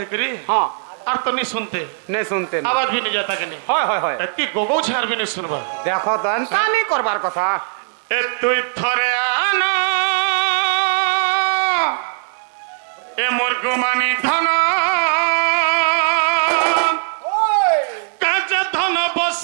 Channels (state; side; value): silent; left; 59 dB below the other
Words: करी हां और तो नहीं सुनते आवाज भी नहीं जाता के नहीं होय होय होय एती गोगो छार भी नहीं सुनबा देखो तो एंता नहीं करबार कथा ए तुई थरे आना ए मोर गुमानी धना